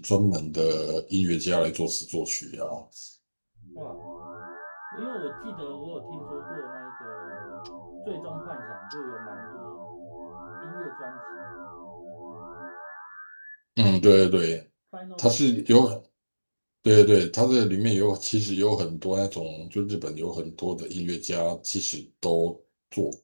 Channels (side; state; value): both; inverted; correlation -1.00